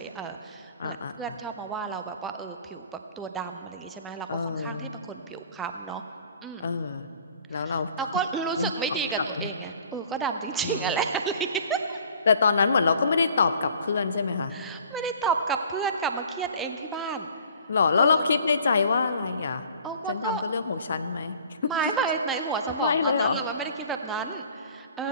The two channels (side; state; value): both; inverted; correlation -0.50